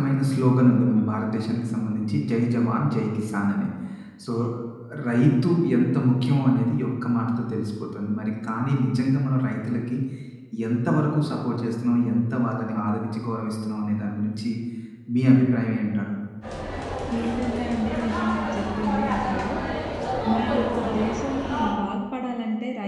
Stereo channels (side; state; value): both; identical; correlation 1.00